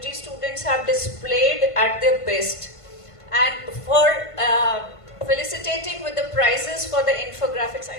students have displayed at their best. And for felicitating with the prizes for the infographics, I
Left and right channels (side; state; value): right; late; 1.5 ms